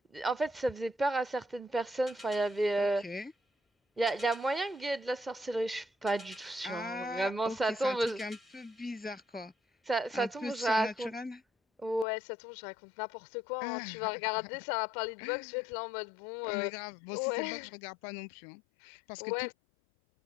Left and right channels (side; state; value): right; drops out; at 12.1 s